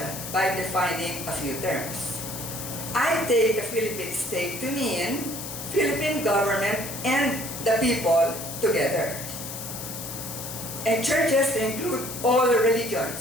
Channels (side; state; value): left; noise; hiss, 8 dB below the sound